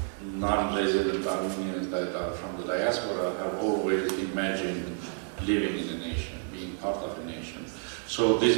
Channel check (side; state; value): left; silent; 58 dB below the other